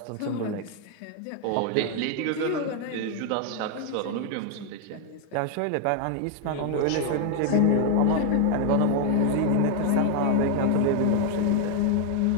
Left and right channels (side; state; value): both; different; correlation 0.01